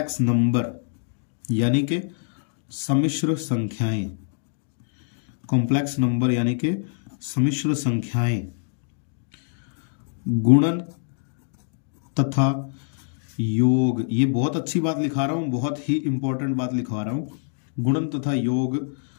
नंबर यानी कि सम्मिश्र संख्याएं, कॉम्प्लेक्स नंबर यानी कि सम्मिश्र संख्याएं, गुणन तथा योग, ये बहुत अच्छी बात लिखा रहा हूं, बहुत ही इंपॉर्टेंट बात लिखवा रहा हूं, गुणन तथा योग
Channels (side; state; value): right; silent; digital silence